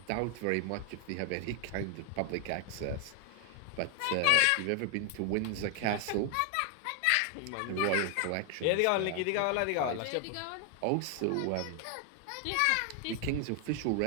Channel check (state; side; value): different; both; correlation 0.00